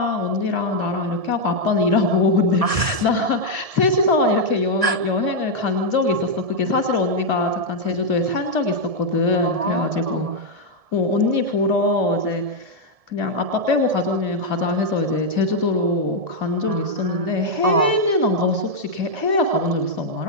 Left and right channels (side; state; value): left; late; 1.7 ms